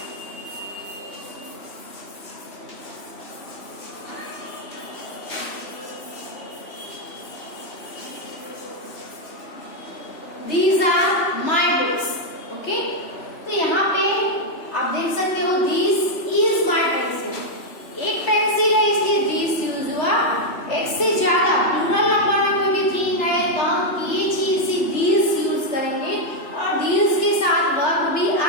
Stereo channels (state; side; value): late; right; 3.1 ms